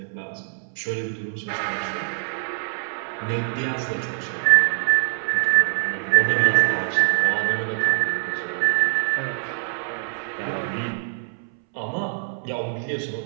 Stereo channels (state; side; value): silent; left; 63 dB below the other